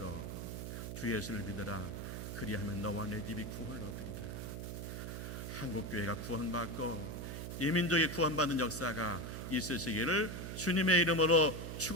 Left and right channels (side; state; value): right; noise; hum, 6 dB below the sound